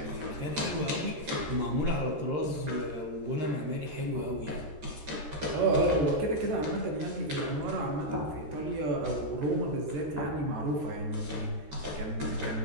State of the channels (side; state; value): left; late; 13 ms